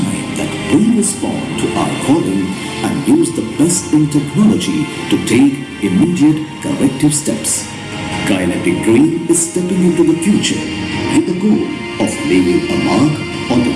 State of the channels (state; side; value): identical; both; correlation 1.00